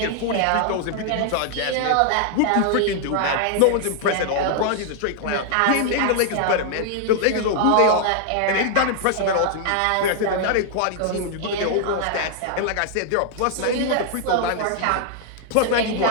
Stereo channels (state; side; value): different; both; correlation 0.00